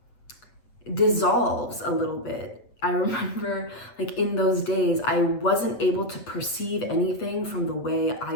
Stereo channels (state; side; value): late; right; 8.2 ms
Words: dissolves a little bit. I remember like in those days, I wasn't able to perceive anything from the way